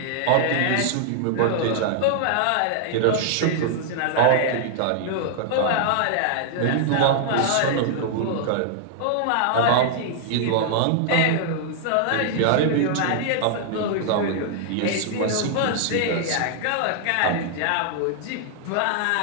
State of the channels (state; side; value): different; both; correlation -0.01